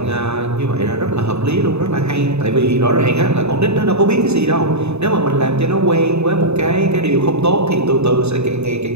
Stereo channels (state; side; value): late; left; 0.80 ms